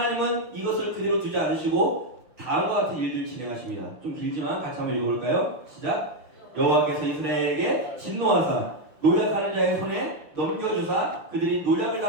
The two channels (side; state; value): left; late; 6.3 ms